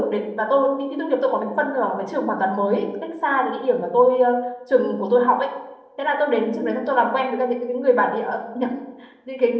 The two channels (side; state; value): both; identical; correlation 1.00